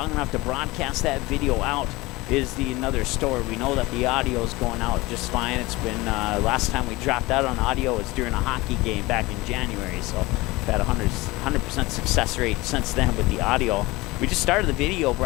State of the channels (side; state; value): right; quieter; 21.3 dB